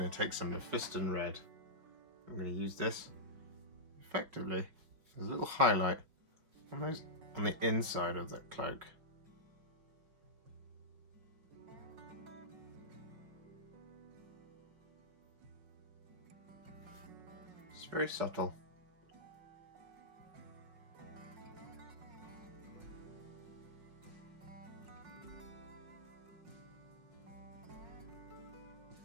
to take some Mephiston Red. I'm going to use this effectively as a little highlight on the inside of that cloak. It's very subtle.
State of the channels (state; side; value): late; left; 5.5 ms